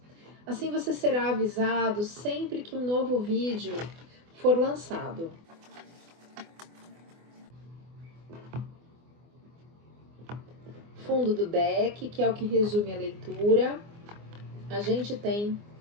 Assim você será avisado sempre que um novo vídeo for lançado. Fundo do deck, que é o que resume a leitura, a gente tem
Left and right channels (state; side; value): late; left; 24 ms